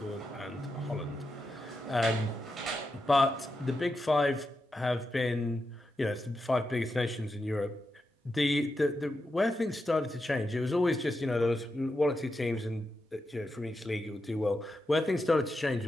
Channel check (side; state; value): both; normal; correlation 0.87